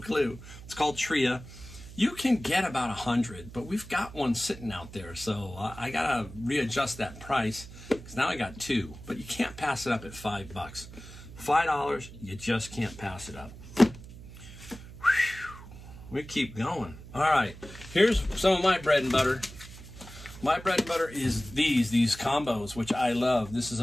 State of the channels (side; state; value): right; noise; hum, 15 dB below the sound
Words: It's called Tria. You can get about 100, but we've got one sitting out there, so I gotta readjust that price because now I got two. But you can't pass it up at $5. $5, you just can't pass it up. Whew. We keep going. All right, here's some of my bread and butter. My bread and butter is these combos, which I love. This is